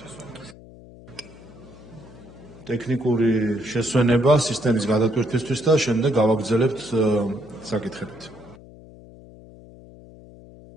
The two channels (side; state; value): left; noise; hum, 20 dB below the sound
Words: ტექნიკური შესვენება სისტემის გადატვირთვისთვის და შემდეგ გავაგრძელებთ საკითხებით.